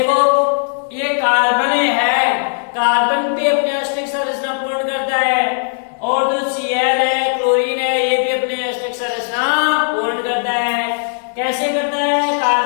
ये कार्बन है, कार्बन भी अपनी अष्टक संरचना पूर्ण करता है और जो Cl है, क्लोरीन है, ये भी अपनी अष्टक संरचना पूर्ण करता है। कैसे करता है?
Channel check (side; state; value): right; silent; digital silence